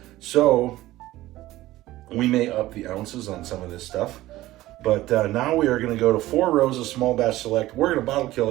So we may up the ounces on some of this stuff, but now we are going to go to 4 rows of small batch select. We're going to bottle kill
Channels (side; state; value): left; quieter; 16.5 dB